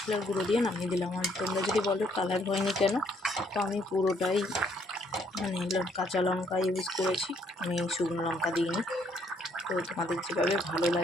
গুঁড়ো দিয়ে নামিয়ে দিলাম। আর তোমরা যদি বলো কালার হয়নি কেন, তো আমি পুরোটাই কাঁচা লঙ্কা ইউজ করেছি, আমি শুকনো লঙ্কা দিইনি। তো তোমাদের যেভাবে ভালো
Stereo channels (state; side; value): normal; both; correlation 0.68